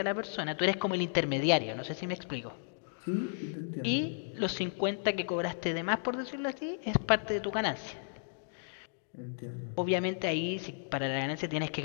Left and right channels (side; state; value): right; silent; digital silence